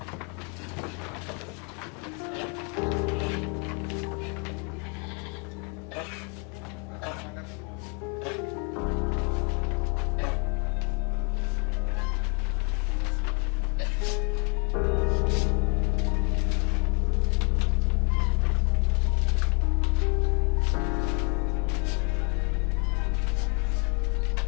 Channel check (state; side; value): quieter; right; 35.8 dB